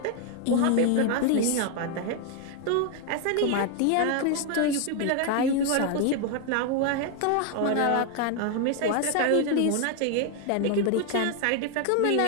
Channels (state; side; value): different; both; correlation 0.01